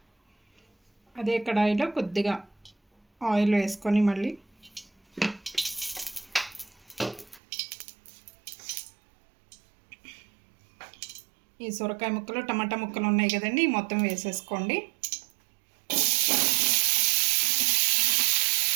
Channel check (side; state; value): left; drops out; at 7.4 s